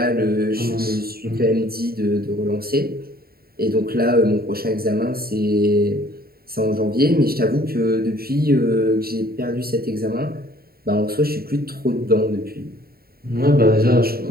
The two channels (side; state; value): left; late; 0.44 ms